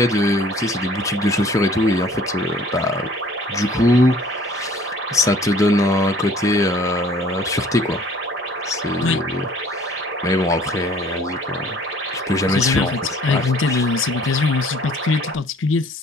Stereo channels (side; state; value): both; normal; correlation 0.54